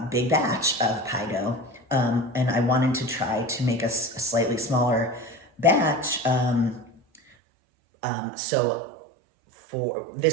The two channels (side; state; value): left; drops out; at 7.2 s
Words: big batch of pie dough. And I wanted to try to make a slightly smaller batch. So